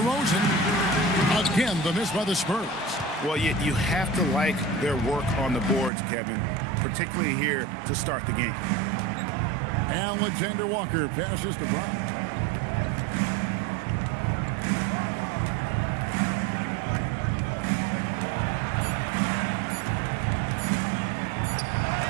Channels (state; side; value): drops out; left; at 5.9 s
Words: Again, the miss by the Spurs. Well, you have to like their work on the boards, Kevin, particularly here to start the game. Alexander Walker passes to Brown.